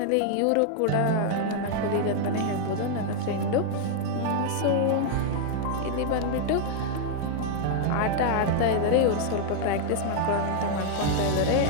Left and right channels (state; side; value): different; both; correlation 0.00